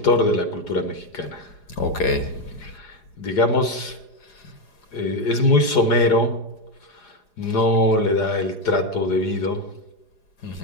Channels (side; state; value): right; late; 4.8 ms